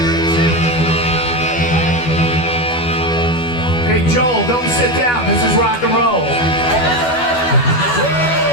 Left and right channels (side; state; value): right; late; 12 ms